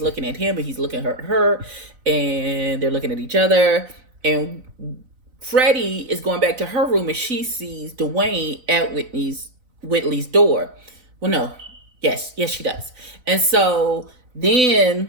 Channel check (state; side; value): late; left; 4.0 ms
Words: looking at him and he's looking at her, and they're looking at each other. And Freddie is going back to her room, and she sees Dwayne at Whitley's door. Well, no, yes, she does. And so then